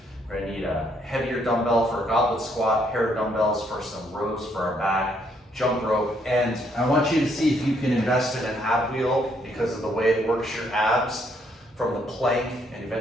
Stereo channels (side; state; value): both; normal; correlation 0.71